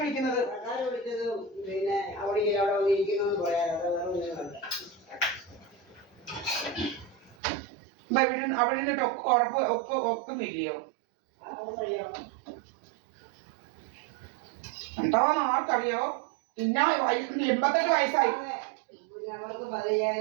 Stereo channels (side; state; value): left; drops out; at 7.4 s